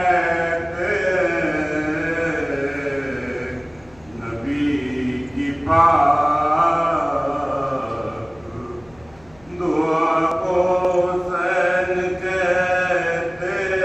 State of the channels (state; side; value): noise; left; hum, 27 dB below the sound